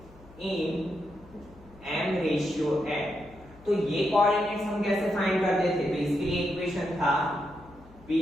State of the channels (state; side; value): noise; left; hum, 23 dB below the sound